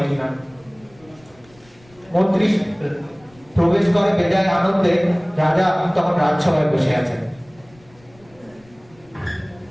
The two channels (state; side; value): noise; left; rumble, 28 dB below the sound